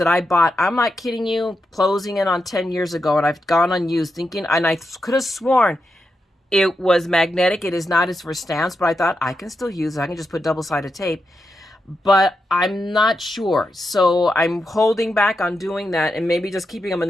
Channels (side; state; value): both; normal; correlation 0.86